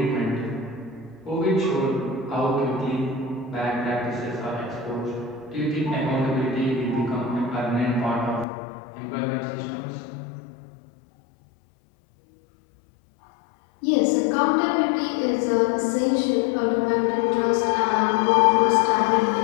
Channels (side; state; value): right; drops out; at 8.5 s